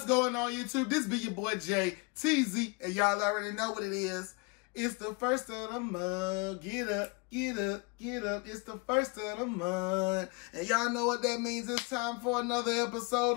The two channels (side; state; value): right; quieter; 28.4 dB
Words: going on, YouTube? This be your boy Jay TZ, and y'all already know what it is. It's the first of the month. Get up, get up, get up. It's the first of the month. And y'all know what that means. It's time for another episode